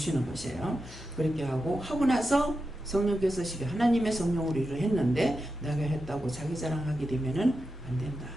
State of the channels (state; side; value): normal; both; correlation 0.89